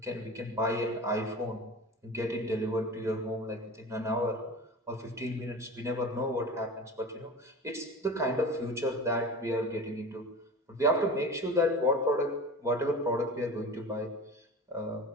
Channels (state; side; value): normal; both; correlation 0.33